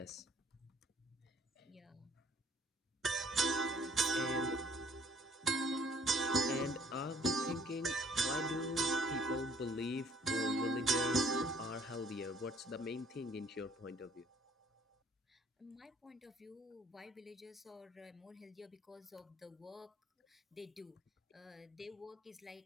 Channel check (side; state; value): both; normal; correlation 0.59